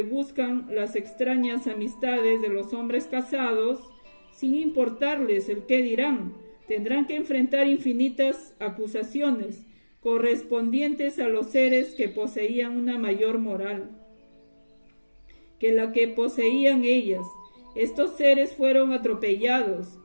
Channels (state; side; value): inverted; both; correlation -1.00